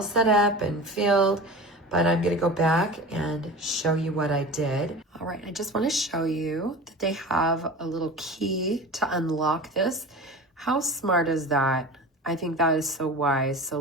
set up and filled, but I'm gonna go back and show you what I did. All right, I just wanna show you that they have a little key to unlock this. How smart is that? I think that is so wise, so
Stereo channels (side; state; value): both; normal; correlation 0.34